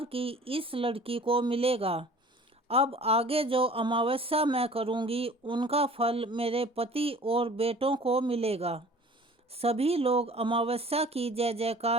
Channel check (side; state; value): both; normal; correlation 0.47